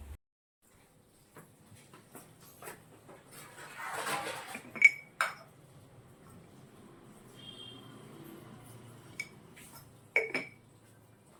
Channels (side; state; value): both; identical; correlation 1.00